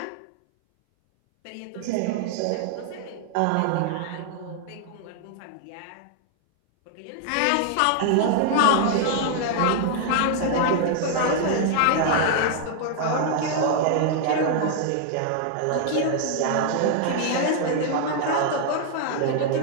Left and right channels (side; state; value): both; different; correlation 0.00